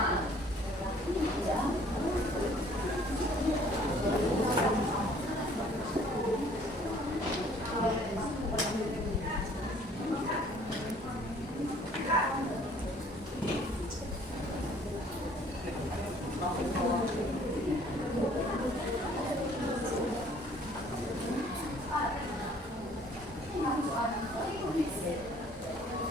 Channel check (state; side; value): normal; both; correlation 0.57